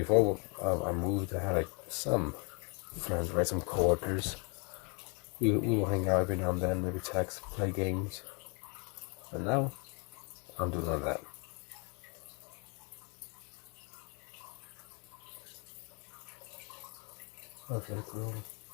I moved, I had like some friends, right? Some coworkers. We will hang out every now and then, maybe text, play games. But now, I don't do none of that. Okay, cool.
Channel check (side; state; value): right; quieter; 34.5 dB